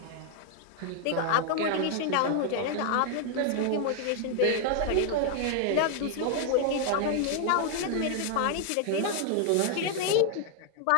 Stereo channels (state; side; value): different; both; correlation 0.00